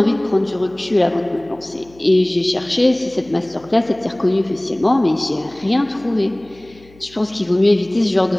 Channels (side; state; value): left; noise; hum, 26 dB below the sound